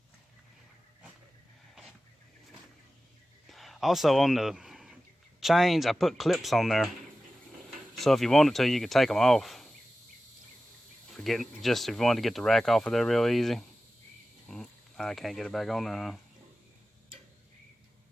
Also on the chains, I put clips on there, so if you wanted to, you could take them off. If you wanted to get the rack off of there real easy. I can't get it back on there, huh?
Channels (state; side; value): normal; both; correlation 0.95